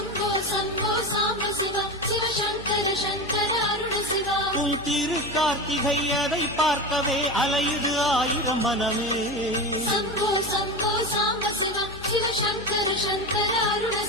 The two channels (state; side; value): noise; left; hum, 17 dB below the sound